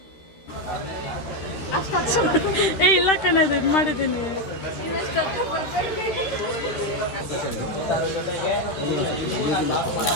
ಏ ಇಲ್ಲ ಕಣದು, ಇದು ಮಾಡಿದ್ದೀನಿ.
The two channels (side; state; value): right; late; 13 ms